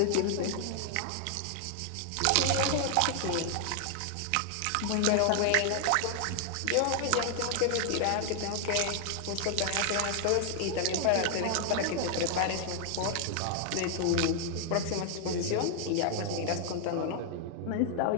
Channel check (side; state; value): both; different; correlation 0.00